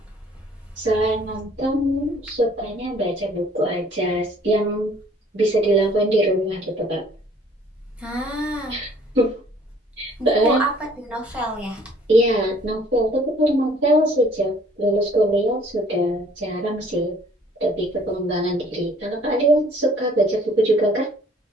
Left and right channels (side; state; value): both; normal; correlation 0.57